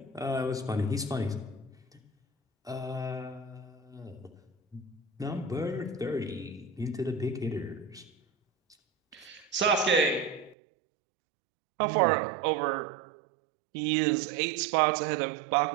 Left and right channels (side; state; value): left; drops out; at 10.6 s